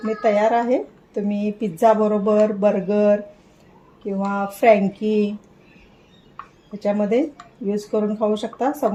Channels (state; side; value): identical; both; correlation 1.00